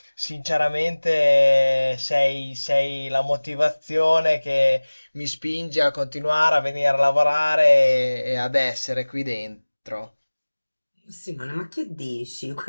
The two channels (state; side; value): inverted; both; correlation -1.00